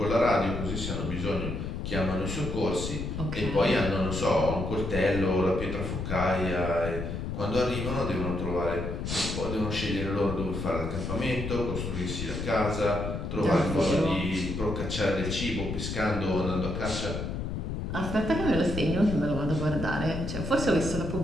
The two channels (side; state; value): left; noise; rumble, 4 dB below the sound